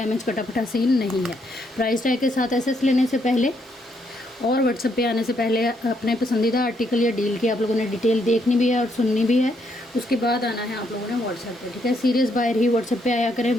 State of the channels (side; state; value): both; normal; correlation 0.74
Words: कटाफटा सीन नहीं है। प्राइस टैग के साथ एसएस लेने से पहले और व्हाट्सएप पे आने से पहले अपने पसंदीदा आर्टिकल या डील की आप लोगों ने डिटेल देखनी भी है और सुननी भी है। उसके बाद आना है आप लोगों ने व्हाट्सएप पे। ठीक है, सीरियस बायर ही व्हाट्सएप पे आया